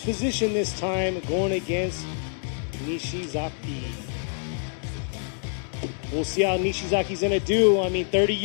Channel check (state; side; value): silent; right; digital silence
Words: this time, going against Nishizaki. We'll see how Nishizaki's going to do. I mean, 30